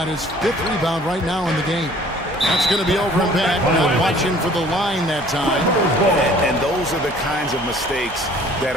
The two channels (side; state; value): both; normal; correlation 0.53